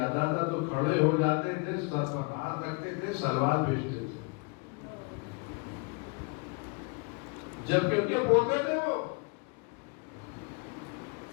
تھا تو کھڑے ہو جاتے تھے، سر پر ہاتھ رکھتے تھے، سلوات بھیجتے تھے، جبکہ ان کے بولتے تھے وہ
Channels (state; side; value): quieter; right; 32.6 dB